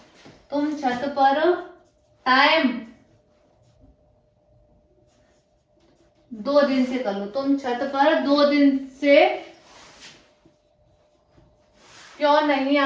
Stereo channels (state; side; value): identical; both; correlation 1.00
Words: तुम छत पर टाइम 2 दिन से कर लो, तुम छत पर 2 दिन से क्यों नहीं